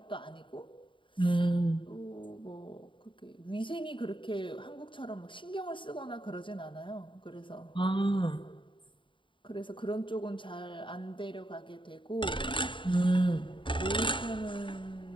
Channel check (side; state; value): right; late; 0.24 ms